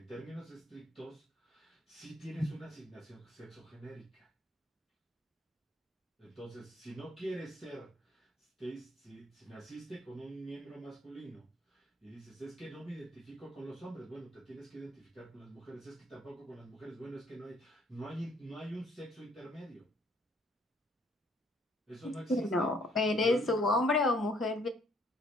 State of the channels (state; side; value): normal; both; correlation 0.64